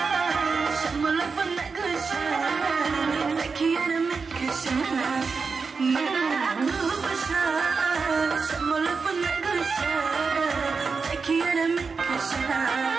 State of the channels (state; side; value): quieter; left; 4.9 dB